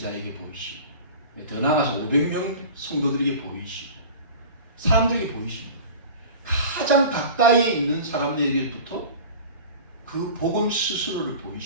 보이시고 더 나아가서 500명 성도들에게 보이시고 사람들에게 보이시고 가장 가까이에 있는 사람들에게부터 그 복음 스스로를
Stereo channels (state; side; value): inverted; both; correlation -0.37